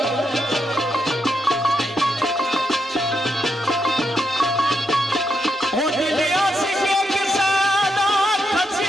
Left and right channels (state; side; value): normal; both; correlation 0.81